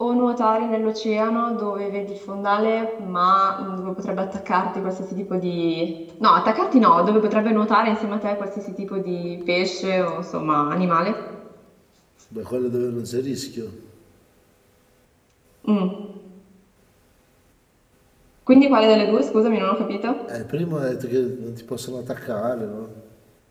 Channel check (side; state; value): both; identical; correlation 1.00